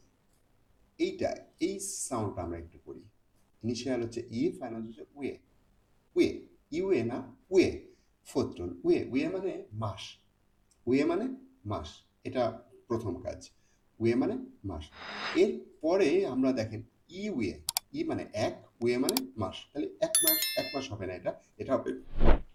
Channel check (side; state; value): both; identical; correlation 1.00